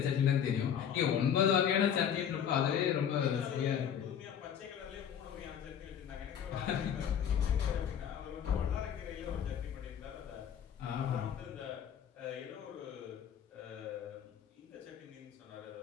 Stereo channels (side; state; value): right; quieter; 8.6 dB